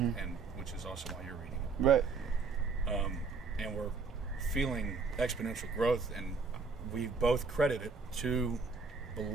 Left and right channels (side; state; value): left; quieter; 4.6 dB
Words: and which is also why you're reading it. Right. And we're feeling exponential growth, and we both credit it to